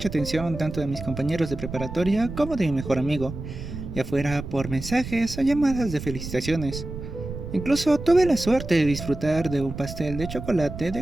atención tanto de mis compañeros de preparatoria como de mi mejor amigo, ya fuera por mensajes o llamadas de felicitaciones. Incluso tuve la suerte de disfrutar de un pastel de chocolate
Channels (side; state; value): right; noise; rumble, 9 dB below the sound